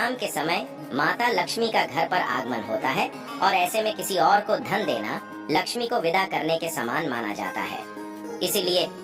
के समय माता लक्ष्मी का घर पर आगमन होता है और ऐसे में किसी और को धन देना लक्ष्मी को विदा करने के समान माना जाता है। इसीलिए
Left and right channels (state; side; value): identical; both; correlation 1.00